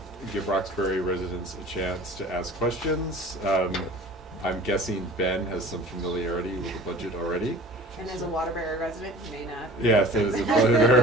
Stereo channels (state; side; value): normal; both; correlation 0.43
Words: give Roxbury residents a chance to ask questions. I'm guessing Ben has some familiarity with the budget already. And as a Waterbury resident, you may not. Yes, it is a